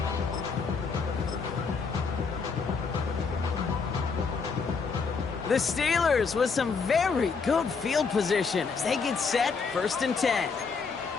The Steelers with some very good field position as they get set, first and 10.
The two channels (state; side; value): quieter; right; 5.1 dB